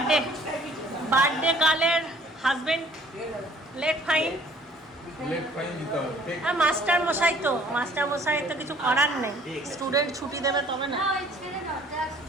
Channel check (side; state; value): both; normal; correlation 0.56